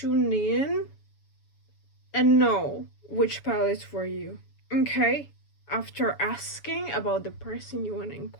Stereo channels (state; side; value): late; right; 7.1 ms